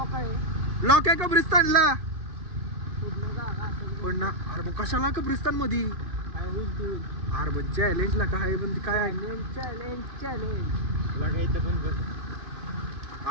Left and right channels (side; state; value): left; late; 2.7 ms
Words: लॉक आहे कब्रिस्तानला पण ना अरे मग कशाला कब्रिस्तान मध्ये अरे पण चॅलेंज ला काय पण काय